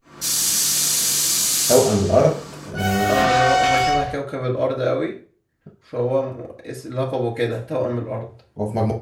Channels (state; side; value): identical; both; correlation 1.00